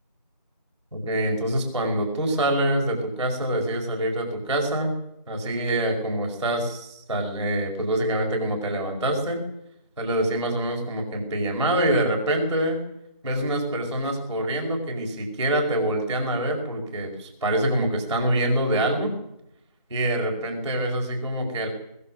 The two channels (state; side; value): inverted; both; correlation -0.46